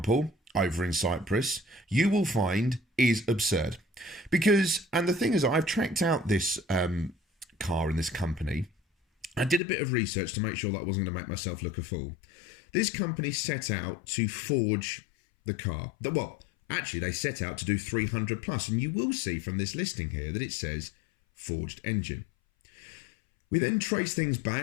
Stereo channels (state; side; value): drops out; right; at 9.6 s